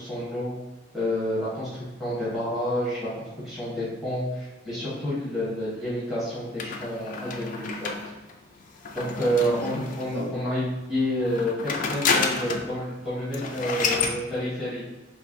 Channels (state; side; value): normal; both; correlation 0.49